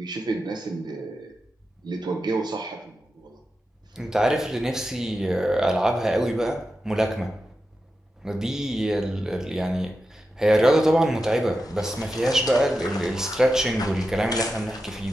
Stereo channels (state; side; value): normal; both; correlation 0.90